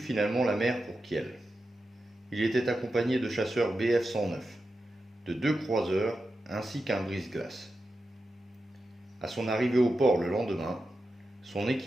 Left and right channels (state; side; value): normal; both; correlation 0.90